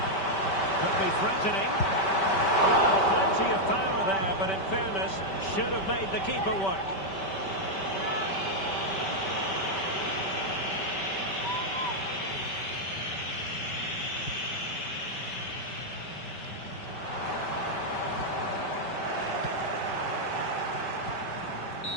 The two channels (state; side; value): late; right; 5.2 ms